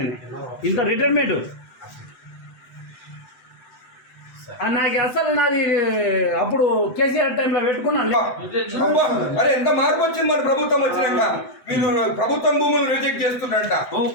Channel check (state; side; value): late; right; 7.9 ms